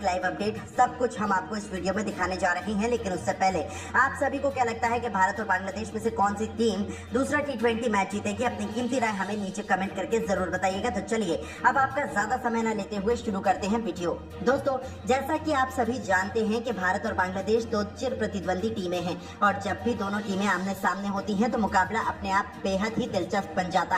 लाइव अपडेट, सब कुछ हम आपको इस वीडियो में दिखाने जा रहे हैं। लेकिन उससे पहले आप सभी को क्या लगता है कि भारत और बांग्लादेश में से कौन सी टीम दूसरा T20 मैच जीतेगी? अपनी कीमती राय हमें नीचे कमेंट करके जरूर बताइएगा। तो चलिए अब आपका ज्यादा समय न लेते हुए शुरू करते हैं वीडियो। दोस्तों जैसा कि आप सभी जानते हैं कि भारत और बांग्लादेश 2 चिर प्रतिद्वंदी टीमें हैं और जब भी दोनों टीमें आमने सामने होती हैं तो मुकाबला अपने आप बेहद ही दिलचस्प बन जाता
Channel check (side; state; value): both; identical; correlation 1.00